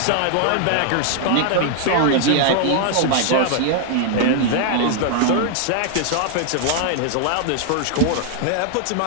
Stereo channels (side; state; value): both; different; correlation 0.00